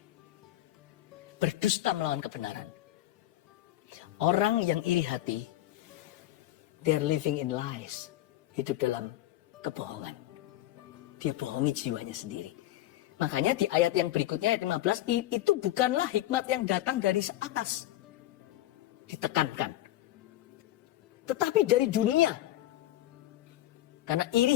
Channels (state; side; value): quieter; right; 14.5 dB